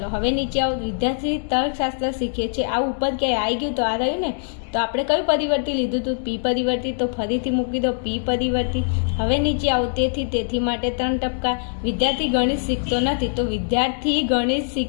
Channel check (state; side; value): silent; right; digital silence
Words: હવે નીચે આવો. વિદ્યાર્થી તર્કશાસ્ત્ર શીખે છે, આ ઉપર ક્યાંય આવી ગયું તો આ રહ્યું ને, તો આપણે કયું પરિવર્તી લીધું હતું? પી પરિવર્તી. તો ફરીથી મૂકી દો પી પરિવર્તી. હવે નીચે આવો. તેથી માટે 3 ટપકા. વિદ્યાર્થી ગણિત શીખતો નથી, તો વિદ્યાર્થી ગણિત